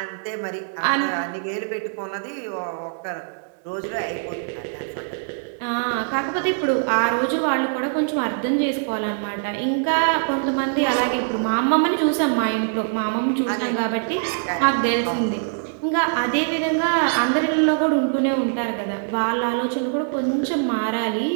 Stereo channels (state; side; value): silent; left; digital silence